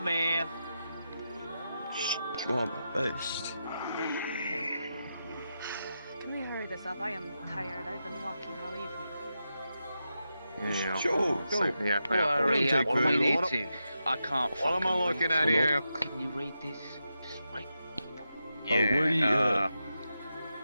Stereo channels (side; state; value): both; inverted; correlation -0.88